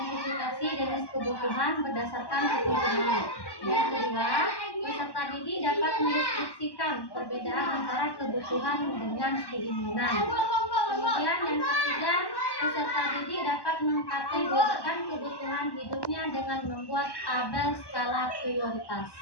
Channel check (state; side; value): late; right; 1.1 ms